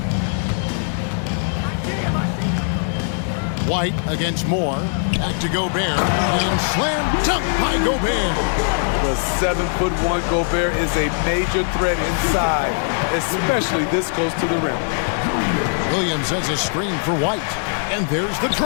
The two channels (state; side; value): silent; right; digital silence